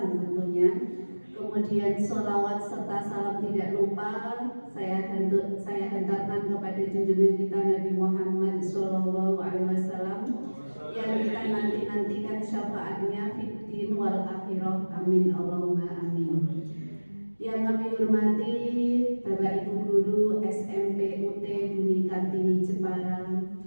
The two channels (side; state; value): both; inverted; correlation -1.00